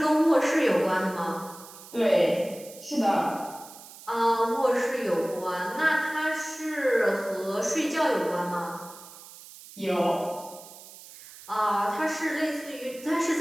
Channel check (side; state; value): right; noise; hiss, 18 dB below the sound